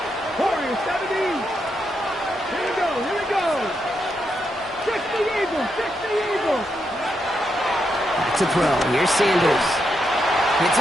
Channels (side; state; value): both; normal; correlation 0.82